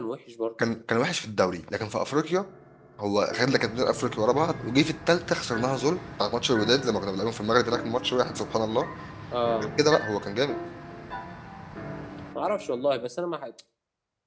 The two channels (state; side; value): identical; both; correlation 1.00